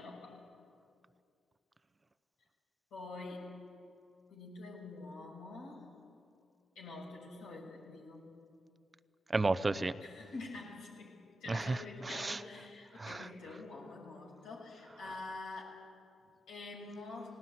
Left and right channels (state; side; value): normal; both; correlation 0.92